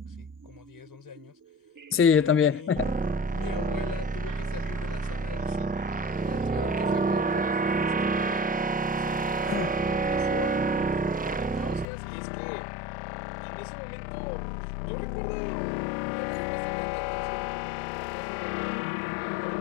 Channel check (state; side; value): drops out; right; at 11.9 s